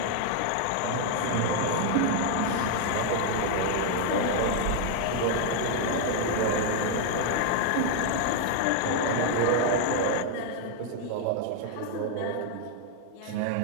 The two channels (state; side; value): different; both; correlation 0.00